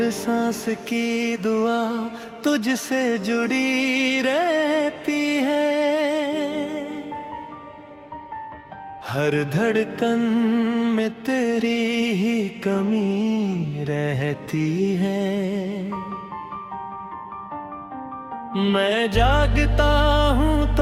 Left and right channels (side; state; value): both; identical; correlation 1.00